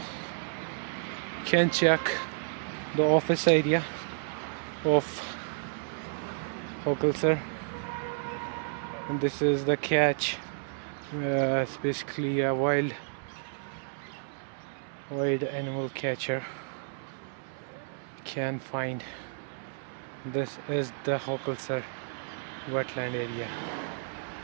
You can check the office area of Hokulsar, and this is the catch. It's basically a wild animal catcher. You can find this is the Hokulsar wetland area,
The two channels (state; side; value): silent; left; 57 dB below the other